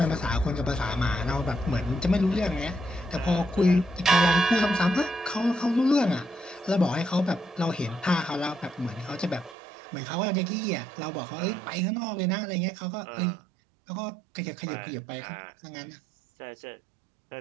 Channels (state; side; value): drops out; left; at 9.6 s